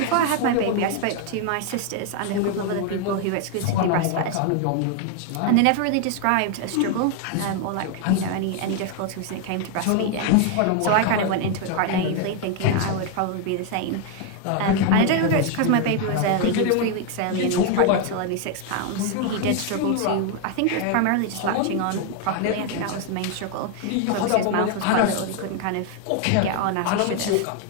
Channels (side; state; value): both; different; correlation 0.01